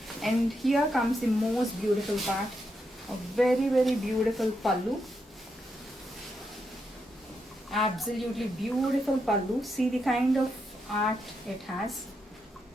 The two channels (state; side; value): normal; both; correlation 0.82